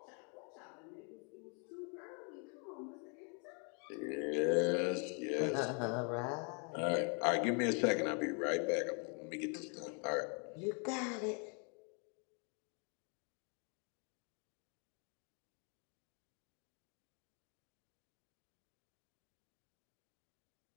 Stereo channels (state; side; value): quieter; right; 37.8 dB